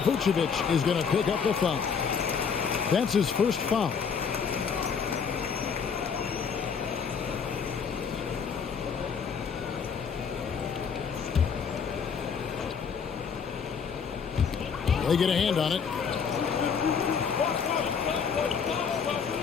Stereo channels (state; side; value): quieter; right; 6.4 dB